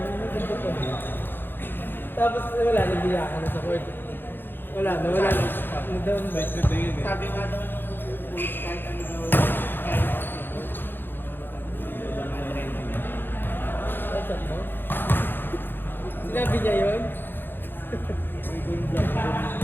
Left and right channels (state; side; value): late; right; 0.099 ms